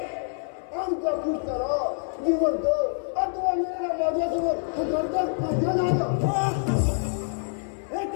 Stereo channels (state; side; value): silent; right; digital silence